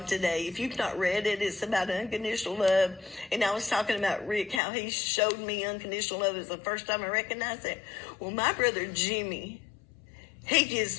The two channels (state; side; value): drops out; right; at 4.6 s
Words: today, if you've not read it, it's about unconditional love. And I was talking about Rick, how he showed me unconditional love. It was the first time I recognized it. Well, my brother Jimmy, he